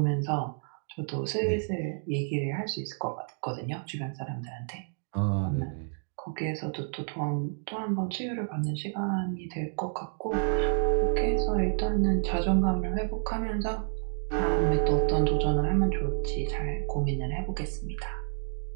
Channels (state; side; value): silent; left; digital silence